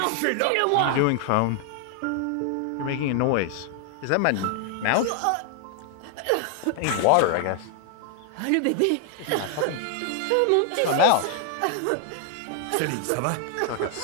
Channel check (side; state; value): both; different; correlation 0.00